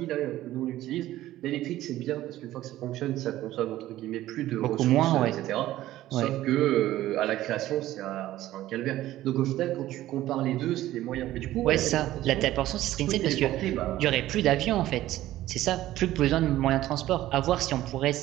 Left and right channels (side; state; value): left; quieter; 14.7 dB